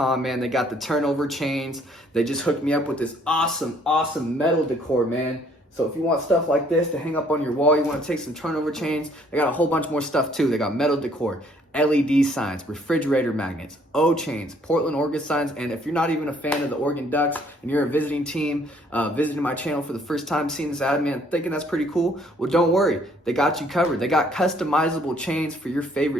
man. They got the turnover chains. They just hooked me up with this awesome metal decor, man. So if you want stuff like this to hang up on your wall, you want to take some turnover chains, they got a whole bunch more stuff too. They got metal decor, LED signs, refrigerator magnets, O-chains, Portland, Oregon signs. And if you're not even a fan of the Oregon Ducks and you're a visiting team, visiting my channel for the first time, seeing this ad, man, thinking that's pretty cool, well, don't worry. They got you covered. They got customizable chains for your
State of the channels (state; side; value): normal; both; correlation 0.63